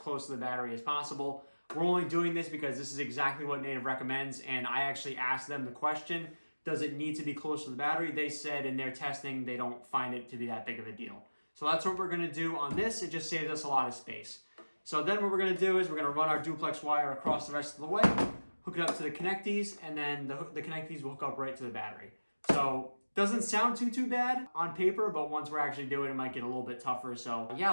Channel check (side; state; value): both; inverted; correlation -1.00